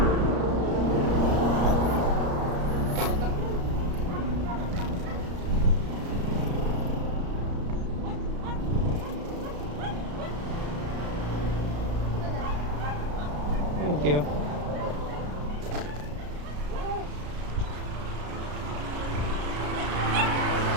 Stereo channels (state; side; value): late; left; 34 ms